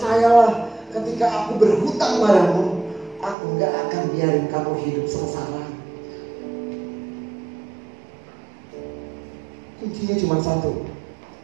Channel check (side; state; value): left; drops out; at 3.4 s